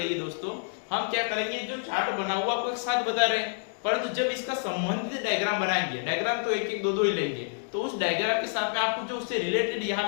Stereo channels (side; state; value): right; silent; digital silence